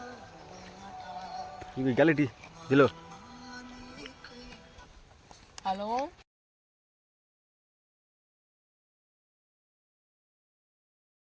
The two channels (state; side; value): identical; both; correlation 1.00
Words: ఇవి గలటి దిలో. హలో.